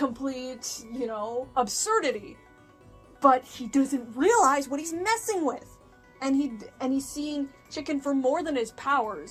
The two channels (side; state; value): both; identical; correlation 1.00